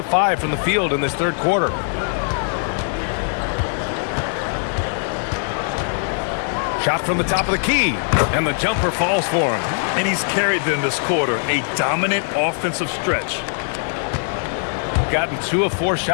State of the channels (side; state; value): right; silent; digital silence